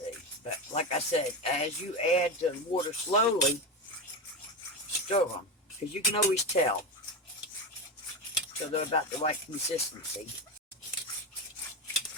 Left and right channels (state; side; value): normal; both; correlation 0.16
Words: But like I said, as you add the water slowly, stir them. Because you can always tell. So they're about the right consistency.